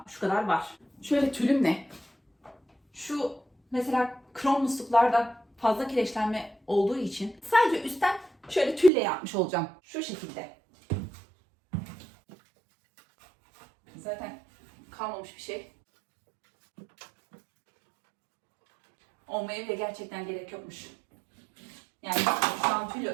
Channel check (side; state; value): left; drops out; at 8.9 s